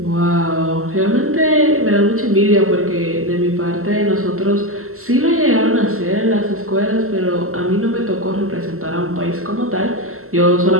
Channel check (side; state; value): left; late; 0.63 ms